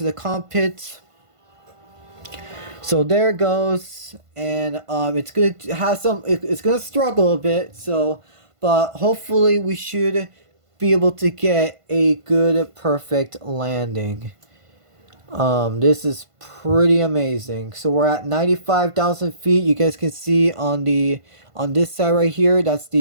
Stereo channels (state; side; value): late; left; 1.5 ms